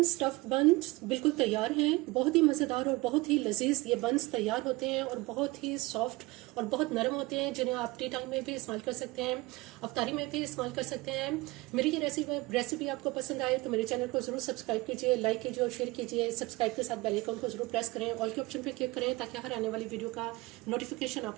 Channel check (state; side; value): quieter; left; 22.0 dB